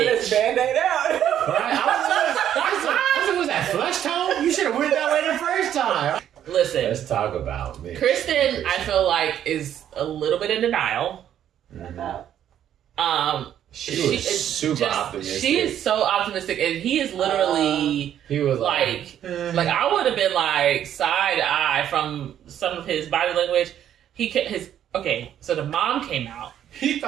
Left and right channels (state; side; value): quieter; left; 10.4 dB